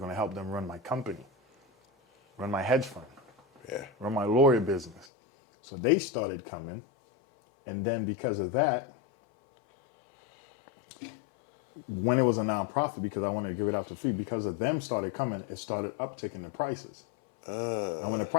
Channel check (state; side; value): drops out; right; at 5.1 s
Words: to help them run my company, run my hedge fund, run my lawyer business. So they started coming. And then because of that, when it was a nonprofit, because I wanted to give it out to free, because of them started coming, it started upticking the prices. And when the